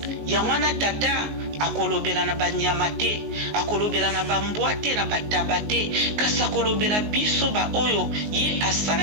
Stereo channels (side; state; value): left; late; 19 ms